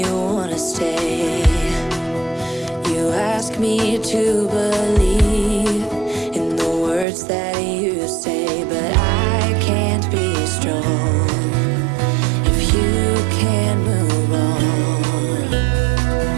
wanna stay. You ask me to believe in the words that you say, but I can't be strong if you can't move on.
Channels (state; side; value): drops out; left; at 7.1 s